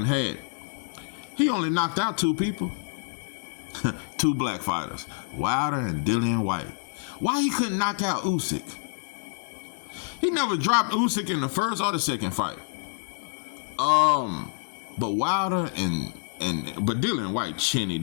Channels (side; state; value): right; silent; digital silence